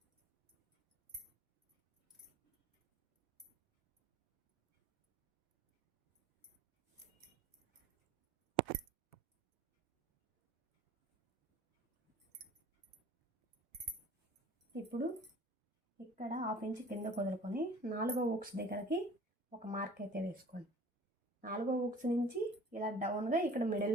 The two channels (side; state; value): both; normal; correlation 0.47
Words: ఇప్పుడు ఇక్కడ 1/2 ఇంచ్ కింద వదులుకొని 4వ ఊక్స్ దగ్గరకి ఒక మార్క్ అయితే వేసుకోండి. 4వ ఊక్స్ నుంచి ఇలా డౌన్గా ఇక్కడ